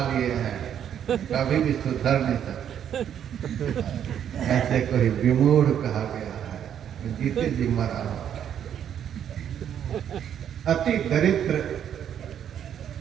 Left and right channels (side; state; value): left; quieter; 9.3 dB